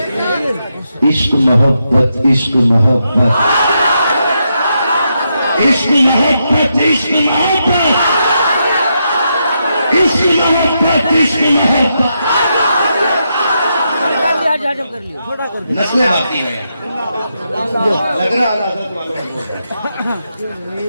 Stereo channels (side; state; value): both; inverted; correlation -0.82